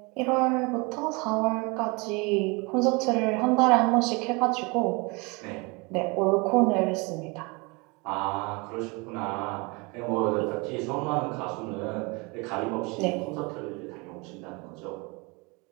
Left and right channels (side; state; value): left; quieter; 28.0 dB